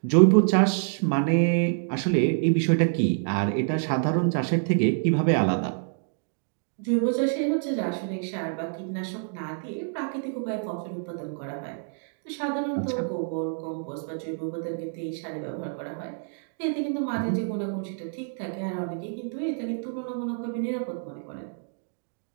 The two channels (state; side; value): silent; left; digital silence